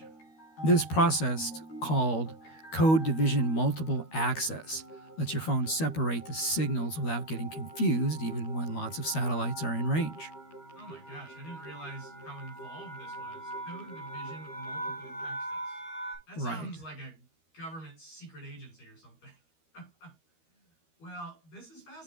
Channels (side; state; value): right; late; 13 ms